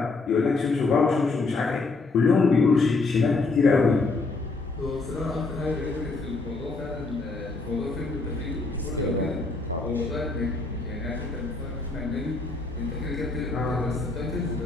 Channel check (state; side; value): quieter; right; 3.7 dB